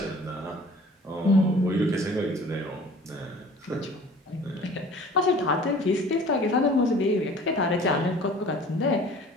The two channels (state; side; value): normal; both; correlation 0.47